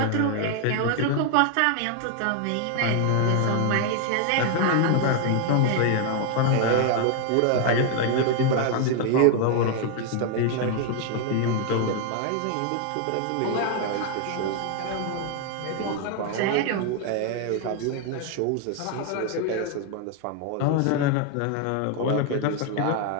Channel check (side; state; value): both; different; correlation 0.00